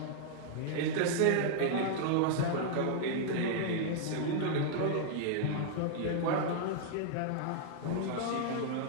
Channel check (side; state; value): both; different; correlation -0.01